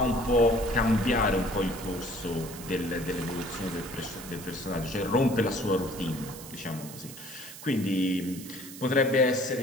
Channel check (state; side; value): noise; right; hiss, 14 dB below the sound